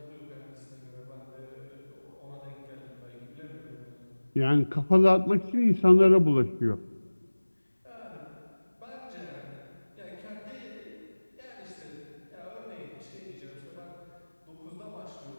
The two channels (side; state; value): both; inverted; correlation -1.00